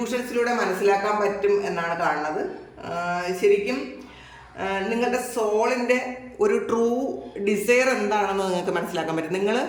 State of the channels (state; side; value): identical; both; correlation 1.00